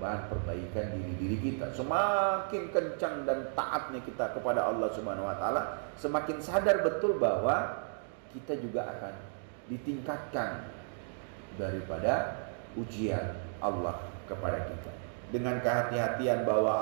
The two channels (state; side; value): silent; left; digital silence